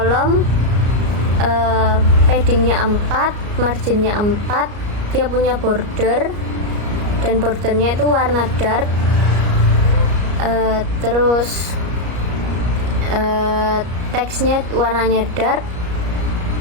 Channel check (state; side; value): late; left; 34 ms